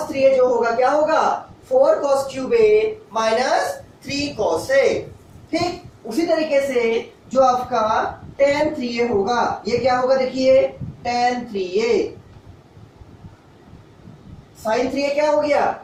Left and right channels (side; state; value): both; identical; correlation 1.00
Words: 3a जो होगा क्या होगा 4 cos cube a minus 3 cos a, ठीक। उसी तरीके से जो आपका tan 3a होगा ये क्या होगा देखिए tan 3a। sin 3a क्या हो गया